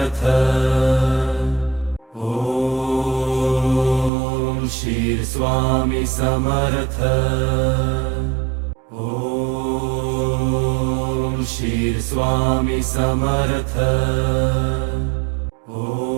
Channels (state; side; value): drops out; left; at 4.1 s